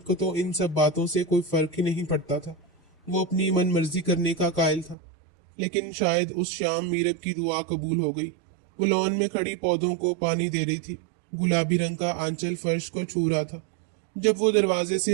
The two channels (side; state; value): left; drops out; at 5.0 s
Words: کو تو ان سب باتوں سے کوئی فرق ہی نہیں پڑتا تھا۔ وہ اپنی من مرضی کرنے کا قائل تھا۔ لیکن شاید اس شام میرب کی دعا قبول ہو گئی۔ وہ لان میں کھڑی پودوں کو پانی دے رہی تھی۔ گلابی رنگ کا آنچل فرش کو چھو رہا تھا۔ جب وہ دروازے